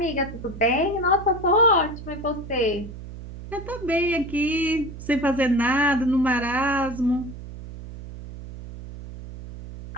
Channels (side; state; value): right; noise; hum, 12 dB below the sound